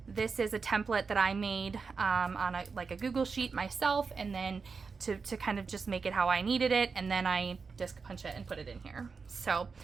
This is a template that I made on a Google sheet myself, and then to kind of just make it how I needed it, and then I disc punch it and put it in here. So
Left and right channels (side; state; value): left; quieter; 5.0 dB